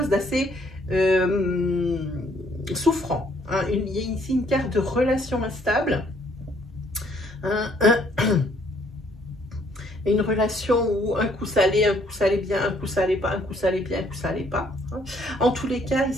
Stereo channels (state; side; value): normal; both; correlation 0.65